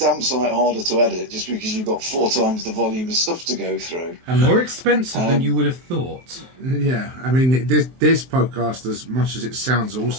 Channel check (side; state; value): left; late; 23 ms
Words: sight harder to edit, just because you've got 4 times the volume of stuff to go through. And more expensive than you would have thought. Yeah, I mean, this podcast, as much as it sounds